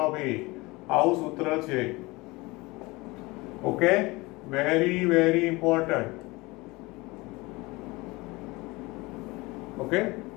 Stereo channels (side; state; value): right; quieter; 23.0 dB